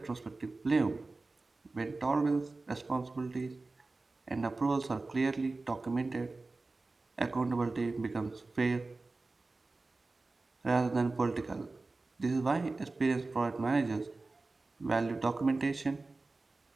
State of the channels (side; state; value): left; quieter; 3.4 dB